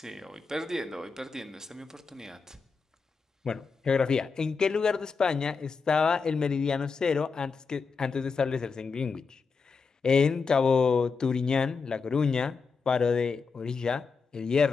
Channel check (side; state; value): right; quieter; 5.0 dB